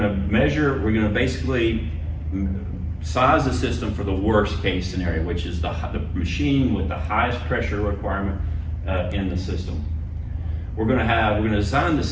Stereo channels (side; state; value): both; identical; correlation 1.00